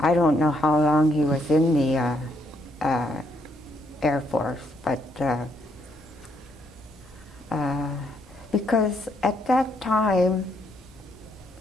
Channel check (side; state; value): both; normal; correlation 0.73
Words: don't know how long he was in the Air Force, but because at that time